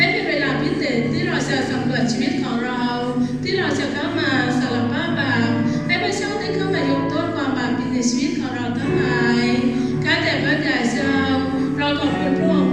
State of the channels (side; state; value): both; identical; correlation 1.00